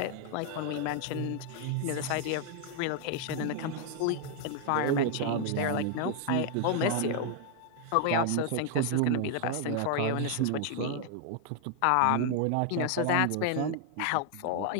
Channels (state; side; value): different; both; correlation 0.00